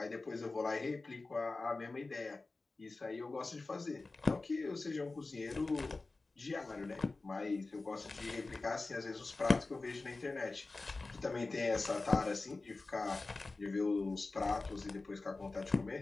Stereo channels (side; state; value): right; quieter; 3.5 dB